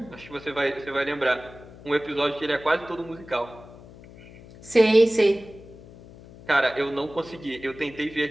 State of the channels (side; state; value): left; noise; hum, 19 dB below the sound